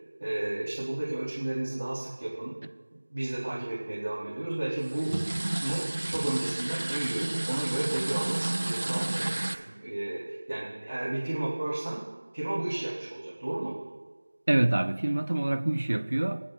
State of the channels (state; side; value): inverted; both; correlation -1.00